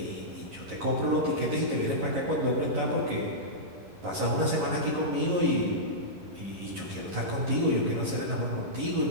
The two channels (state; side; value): late; left; 11 ms